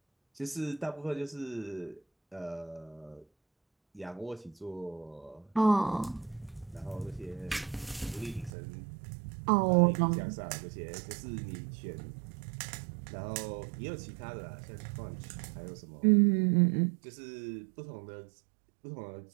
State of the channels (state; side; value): drops out; left; at 8.5 s